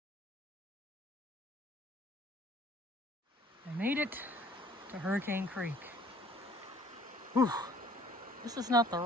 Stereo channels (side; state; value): both; normal; correlation 0.55